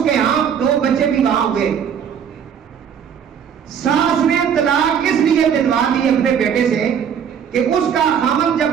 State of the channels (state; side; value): quieter; left; 7.9 dB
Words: کے ہاں 2 بچے بھی وہاں ہوئے. ساس نے طلاق اس لیے دلوا دی اپنے بیٹے سے کہ اس کا خاوند جب